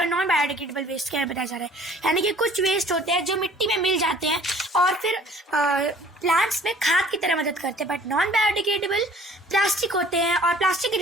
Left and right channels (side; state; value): both; normal; correlation 0.52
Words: नॉन बायोडिग्रेडेबल वेस्ट के बारे में बताया जा रहा है। यानी कि कुछ वेस्ट होते हैं जो मिट्टी में मिल जाते हैं और फिर प्लांट्स में खाद की तरह मदद करते हैं, बट नॉन बायोडिग्रेडेबल प्लास्टिक होते हैं और प्लास्टिक की